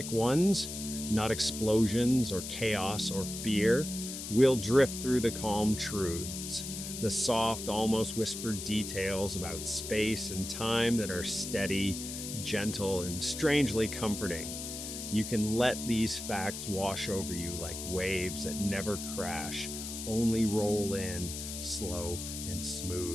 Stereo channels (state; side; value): noise; left; hiss, 7 dB below the sound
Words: ones, not explosions or chaos or fear. We'll drift through the calm truths, the soft, almost whispered details about space and time that are steady, gentle, and strangely comforting. You can let these facts wash over you like waves that never crash, only roll in, slow and